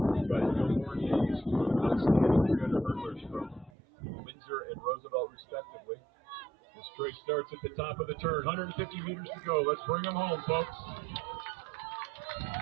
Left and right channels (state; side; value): drops out; left; at 3.7 s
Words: But Gilmore is two outstanding 300 hurdlers from Windsor and Roosevelt, respectively. This race starts at the top of the turn. 150 meters to go. Let's bring them home, folks.